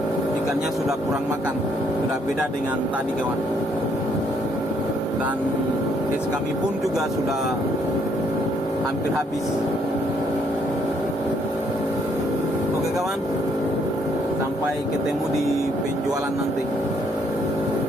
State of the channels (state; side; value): normal; both; correlation 0.69